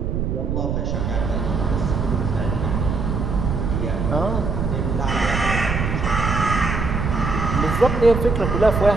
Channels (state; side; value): noise; right; rumble, 1 dB below the sound